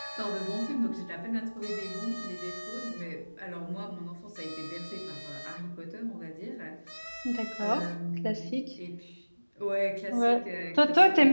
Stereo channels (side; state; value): both; inverted; correlation -1.00